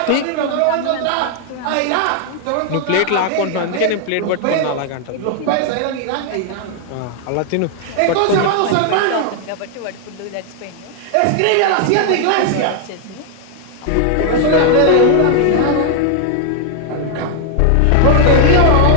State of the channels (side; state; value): both; different; correlation 0.00